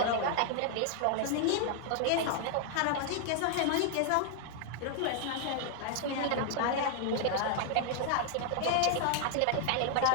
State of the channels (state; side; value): different; both; correlation 0.00